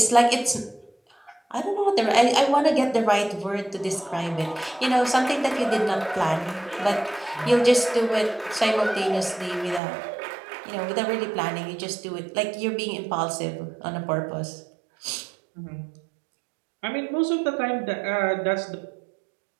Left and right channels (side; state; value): left; drops out; at 9.8 s